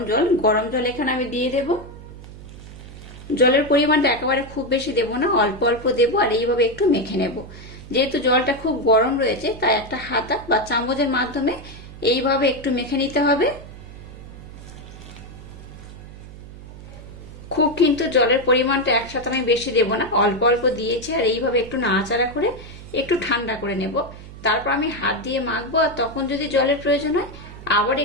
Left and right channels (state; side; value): noise; right; hum, 15 dB below the sound